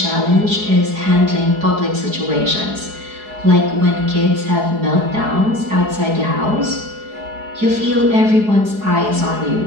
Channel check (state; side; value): late; left; 4.7 ms